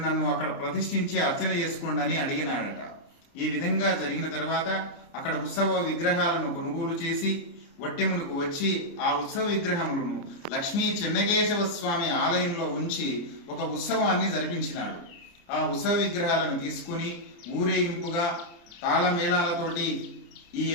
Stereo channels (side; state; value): right; late; 29 ms